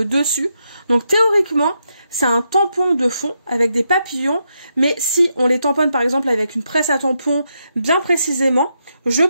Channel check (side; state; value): both; inverted; correlation -0.82